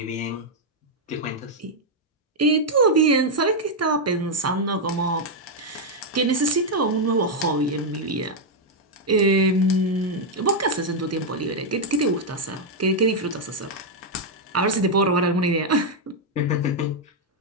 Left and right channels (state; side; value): normal; both; correlation -0.01